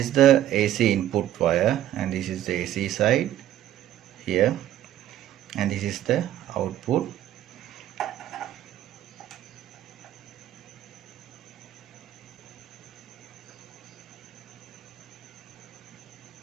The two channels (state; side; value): quieter; left; 12.4 dB